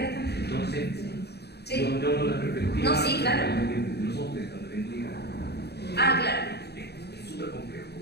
también. Entonces, Sí. yo no la perspectiva. No, sí, claro. De los hombres también diga. Ah, claro. Es súper complejo.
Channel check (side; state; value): right; late; 0.48 ms